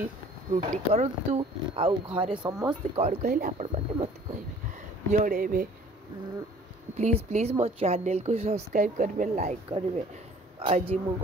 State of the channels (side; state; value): both; normal; correlation 0.52